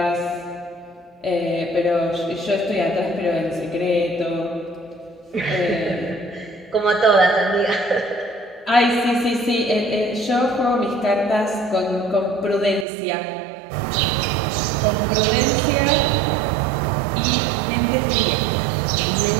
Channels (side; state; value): left; drops out; at 12.9 s